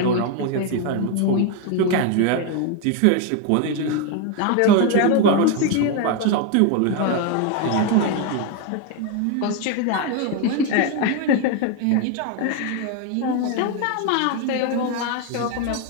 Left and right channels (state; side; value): different; both; correlation 0.02